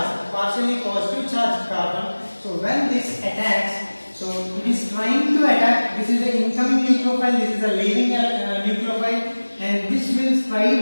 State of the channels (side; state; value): both; inverted; correlation -1.00